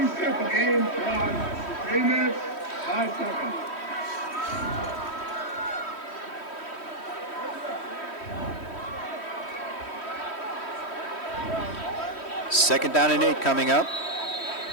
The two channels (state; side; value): late; right; 3.1 ms